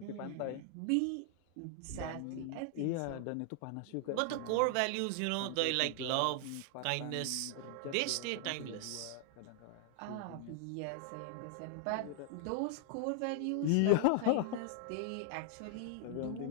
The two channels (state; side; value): different; both; correlation 0.00